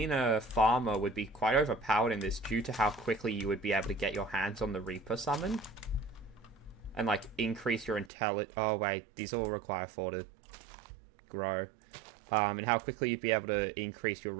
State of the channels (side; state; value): left; drops out; at 8.1 s